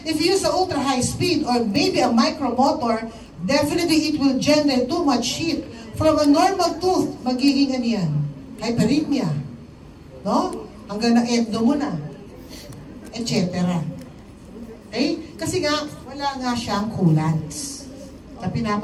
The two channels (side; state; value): both; identical; correlation 1.00